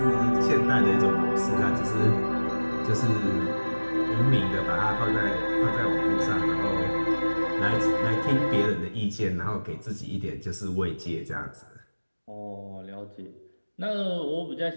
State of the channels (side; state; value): both; inverted; correlation -1.00